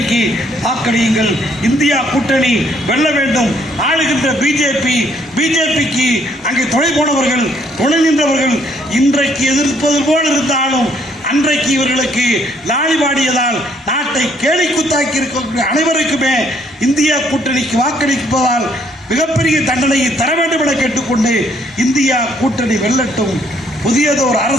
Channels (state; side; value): normal; both; correlation 0.67